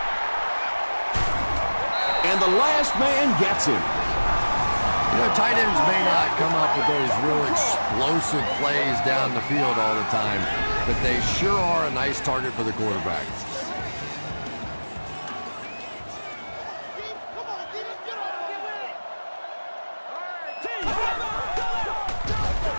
And the last man gets him. You know, tight ends may not come up with those real explosive plays down the field all the time, but they sure are a nice target for the quarterback.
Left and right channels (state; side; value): inverted; both; correlation -1.00